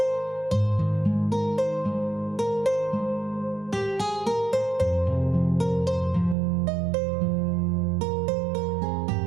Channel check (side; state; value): left; drops out; at 6.4 s